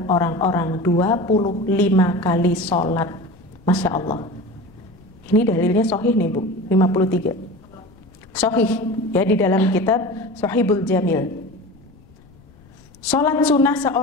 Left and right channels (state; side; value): noise; left; rumble, 26 dB below the sound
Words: orang-orang 25 kali salat. Masya Allah. Ini dalilnya sahih nih, Bu. 53 sahih, ya, di dalam kitab Sahihul Jamil. Salat sunnah